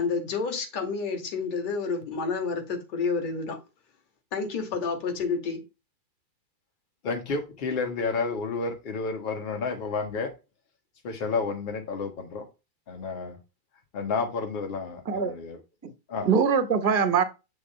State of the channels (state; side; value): late; right; 2.3 ms